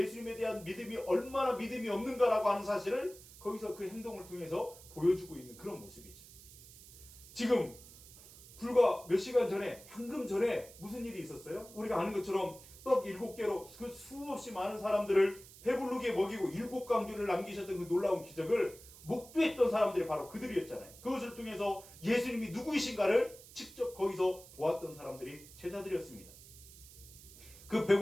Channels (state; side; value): noise; right; hiss, 19 dB below the sound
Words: 대한 믿음이 얼마나 믿음이 없는가라고 하는 사실을 거기서 그 행동을 통해서 보여주고 있는 그런 모습이죠. 지금 불과 몇 시간 전에, 방금 전에 무슨 일이 있었어요? 우리가 아는 것처럼 떡 7개로 그 수없이 많은 사람들을 배부르게 먹이고 7광주를 남기셨던 그 놀라운 기적을 목도했던 사람들이 바로 그들이었잖아요. 그것을 통해서 예수님이 누구이신가를 직접 거기서 보았던 사람들이 제자들이었습니다. 그